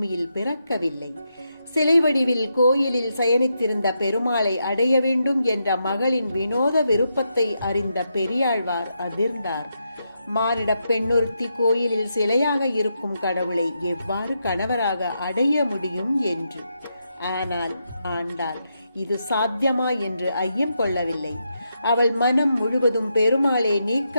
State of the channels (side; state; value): both; inverted; correlation -0.83